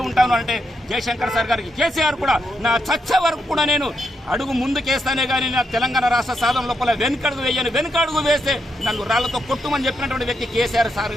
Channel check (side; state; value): both; normal; correlation 0.81